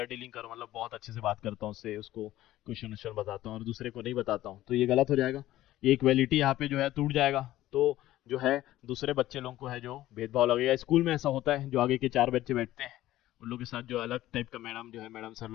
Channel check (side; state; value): right; quieter; 14.9 dB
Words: डीलिंग करूँ, मतलब बहुत अच्छे से बात करता हूँ उससे, उसको क्वेश्चन वोश्चन बताता हूँ और दूसरे को नहीं बताता हूँ, तो ये गलत हो जाएगा, ये इक्वालिटी यहाँ पे जो है टूट जाएगा। तो जो है दूसरे बच्चे लोगों को है जो भेदभाव लगेगा। स्कूल में ऐसा होता है, जो आगे के 4 बच्चे बैठते हैं उन लोग के साथ जो अलग टाइप का मैडम जो है, मैडम सर